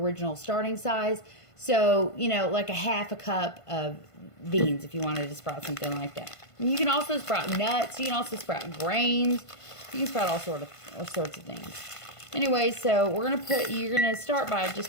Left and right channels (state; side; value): late; right; 1.5 ms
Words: starting size. So, like a half a cup of beans if you wanted to sprout something like that. And you can also sprout nuts. You can also sprout grains. You can sprout all sorts of things. Anyway, so you're gonna start by